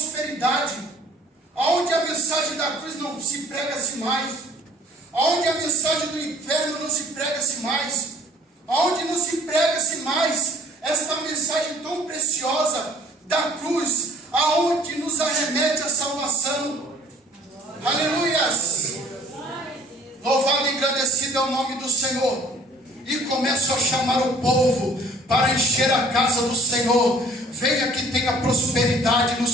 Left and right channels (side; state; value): both; normal; correlation 0.55